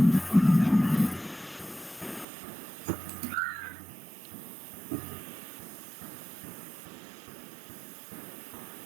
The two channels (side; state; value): left; drops out; at 2.2 s